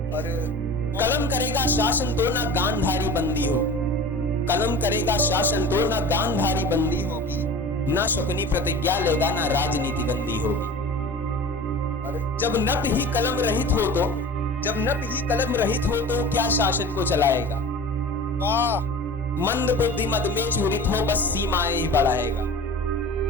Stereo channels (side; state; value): both; normal; correlation 0.38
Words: और कलम करेगा शासन तो ना गांधारी बंदी होगी, कलम करेगा शासन तो ना गांधारी बंदी होगी। ना शकुनी प्रतिज्ञा लेगा ना राजनीति गंदी होगी। और जब नप ही कलम रहित हो तो, जब नप ही कलम रहित हो तो क्या शासन को चलाएगा। वाह। मंद बुद्धि मद में चूरित हो, बस सीमाएं ही बढ़ाएगा।